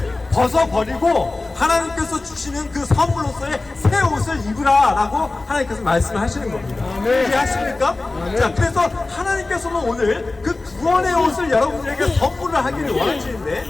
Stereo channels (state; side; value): quieter; right; 3.2 dB